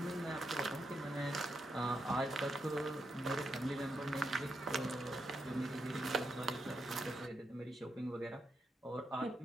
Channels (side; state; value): both; normal; correlation 0.83